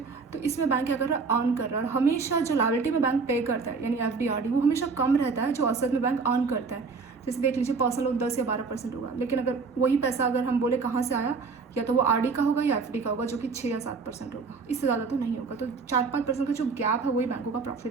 तो इसमें बैंक क्या कर रहा है, अर्न कर रहा है। और हमेशा जो लायबिलिटी में बैंक पे करता है यानी एफडी आरडी वो हमेशा कम रहता है जो असेट में बैंक अर्न करता है। जैसे देख लीजिए, पर्सनल लोन 10 या 12% होगा, लेकिन अगर वही पैसा अगर हम बोले कहाँ से आया, या तो वो आरडी का होगा या एफडी का होगा जो कि 6 या 7% होगा, इससे ज़्यादा तो नहीं होगा। तो 4-5% का जो गैप है वही बैंकों का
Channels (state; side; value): quieter; left; 4.7 dB